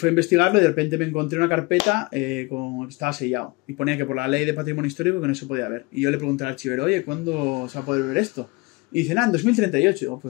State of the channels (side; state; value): right; quieter; 25.3 dB